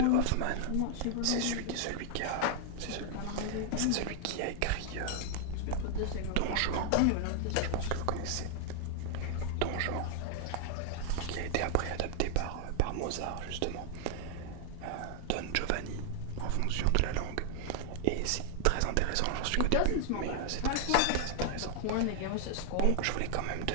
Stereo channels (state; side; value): different; both; correlation 0.00